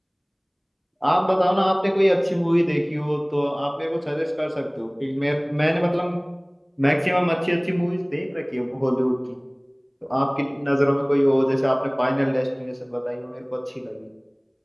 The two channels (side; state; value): both; identical; correlation 1.00